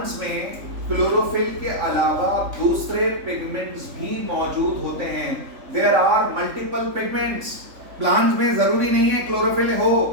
में क्लोरोफिल के अलावा दूसरे पिगमेंट्स भी मौजूद होते हैं। There are multiple pigments. Plants में जरूरी नहीं है क्लोरोफिल हो,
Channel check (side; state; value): left; late; 3.5 ms